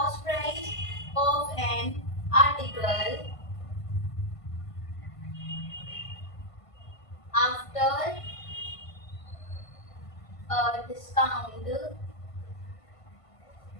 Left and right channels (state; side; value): late; right; 1.5 ms